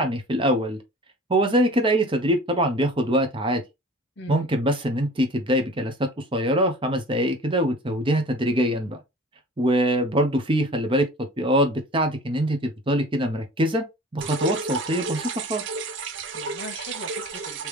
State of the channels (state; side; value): normal; both; correlation 0.43